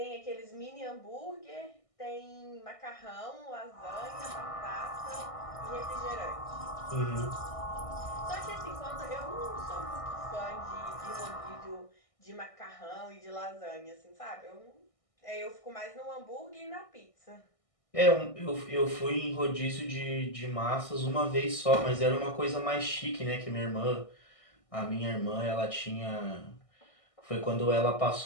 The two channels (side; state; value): right; late; 1.6 ms